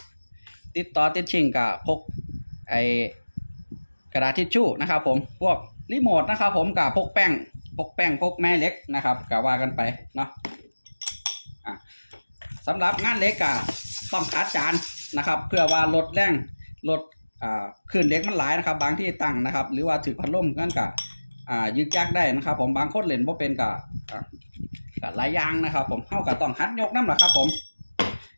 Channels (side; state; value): both; inverted; correlation -1.00